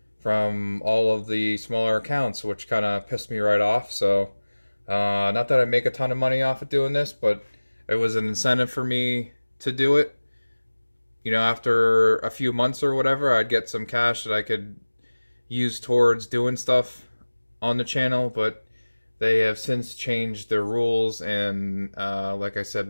from all of the smaller accounts, which kind of pissed me right off. So, not that I make a ton of money off of doing this, but it was an incentive for me to do it. You know, after a few months or whatever, I'd get some cash that I could use towards doing stuff on the channel, but they have since changed their rules, and like I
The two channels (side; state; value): both; inverted; correlation -1.00